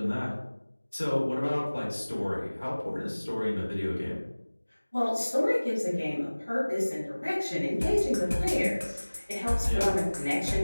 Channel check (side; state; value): both; inverted; correlation -1.00